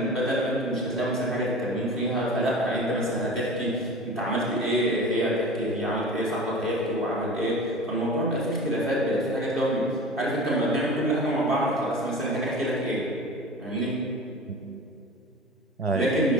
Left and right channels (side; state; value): both; normal; correlation 0.36